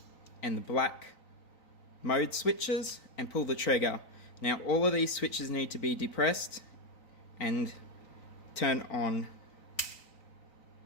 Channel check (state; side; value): late; right; 3.9 ms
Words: and the black mode switches and pull the trigger. Now all of these switches need to be depressed and turn on